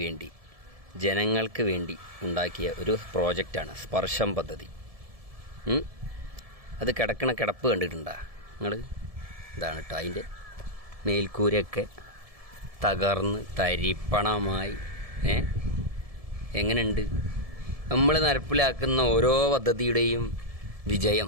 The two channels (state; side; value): late; left; 1.7 ms